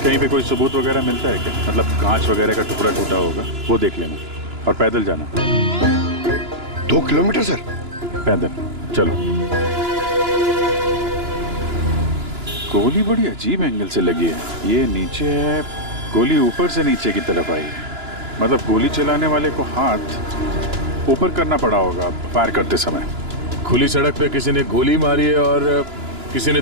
पे कोई सबूत वगैरह मिलता है क्या? मतलब कांच वगैरह का टुकड़ा टूटा होगा, वो देख लेना, और पैदल जाना। 2 किलोमीटर सर? पैदल चलो। गोली बड़ी अजीब एंगल से लगी है। ये नीचे है, गोली ऊपर से नीचे की तरफ आई है। मतलब गोली चलाने वाले को हाथ ऊपर करना पड़ा होगा फायर करते समय। खुली सड़क पे किसी ने गोली मारी है और किसी ने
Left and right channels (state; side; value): late; left; 2.9 ms